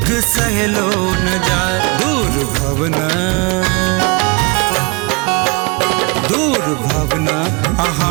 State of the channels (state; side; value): quieter; left; 29.3 dB